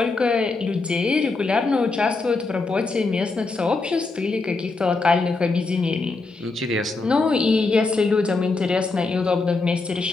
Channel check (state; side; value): quieter; right; 3.7 dB